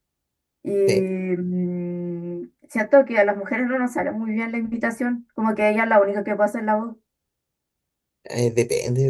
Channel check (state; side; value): identical; both; correlation 1.00